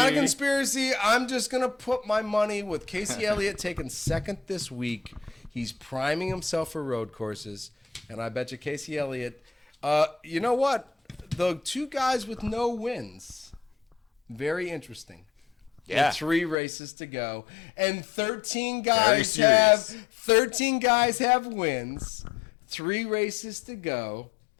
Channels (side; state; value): right; drops out; at 16.6 s